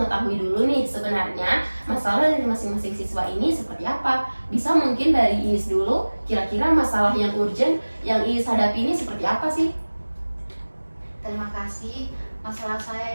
dulu nih sebenarnya masalah dari masing-masing siswa ini seperti apa. Bisa mungkin dari Iis dulu, kira-kira masalah yang urgent yang Iis hadapi ini seperti apa sih? Terima kasih. Masalah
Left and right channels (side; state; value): both; inverted; correlation -1.00